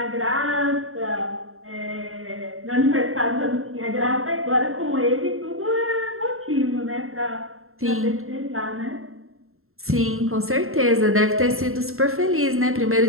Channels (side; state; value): left; late; 0.62 ms